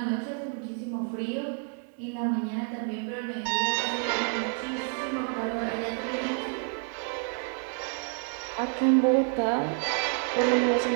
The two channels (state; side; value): quieter; left; 38.6 dB